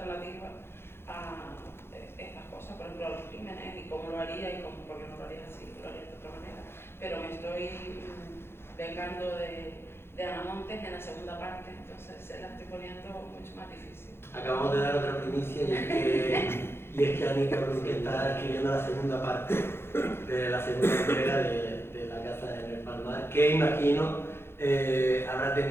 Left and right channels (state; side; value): late; right; 0.11 ms